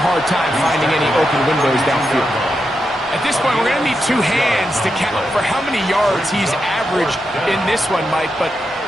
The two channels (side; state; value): both; normal; correlation 0.86